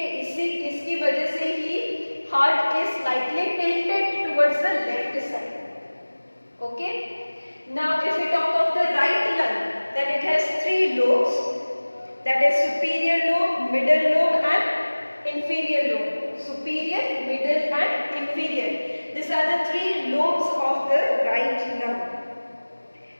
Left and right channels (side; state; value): both; inverted; correlation -1.00